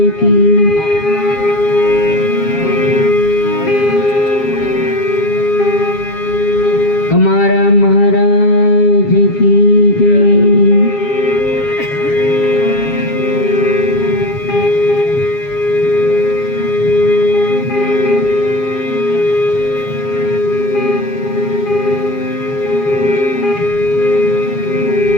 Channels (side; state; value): right; late; 7.3 ms